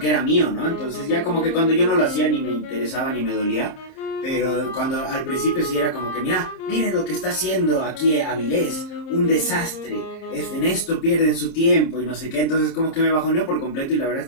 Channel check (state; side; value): late; right; 30 ms